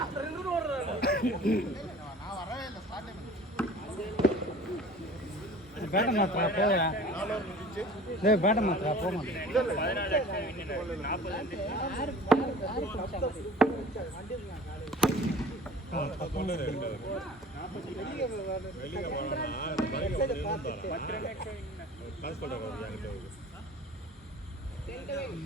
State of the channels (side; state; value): both; normal; correlation 0.44